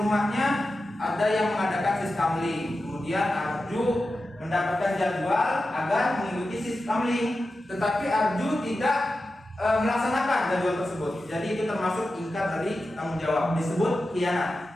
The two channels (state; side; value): normal; both; correlation 0.92